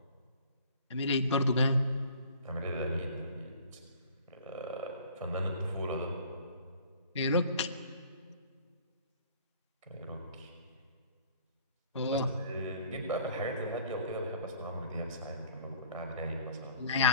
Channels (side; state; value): both; inverted; correlation -0.52